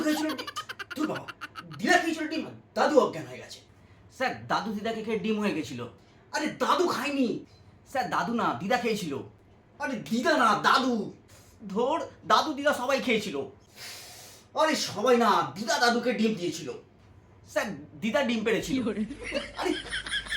খেয়েছিল ডিম। তুই বাবা, দিদা খেয়েছিল ডিম, দাদু অজ্ঞান হয়ে গেছে। স্যার, দাদু দিদাকে খেয়ে ডিম হয়ে গেছিল। আরে দাদু খায়নি। স্যার, দাদু না, দিদা খেয়েছিল। আরে দিদা না, দাদু। ধর, দাদু দিদা সবাই খেয়েছিল। আরে সবাই না, দিদা দাদুকে ডিম দিয়েছিল। স্যার, দিদা ডিম পেড়েছিল। আরে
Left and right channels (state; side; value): identical; both; correlation 1.00